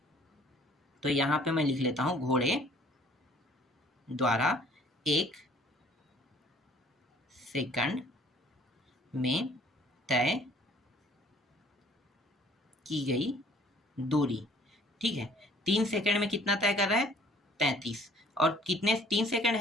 तो यहाँ पे मैं लिख लेता हूँ, घोड़े द्वारा 1 सेकंड में तय की गई दूरी, ठीक है। 3 सेकंड में कितना तय कर रहा है, 33, और कितने 3 सेकंड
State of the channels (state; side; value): normal; both; correlation 0.56